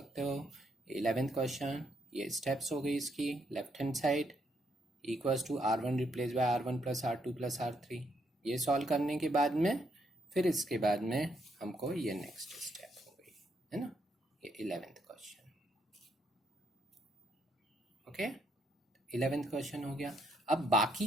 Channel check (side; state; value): both; normal; correlation 0.74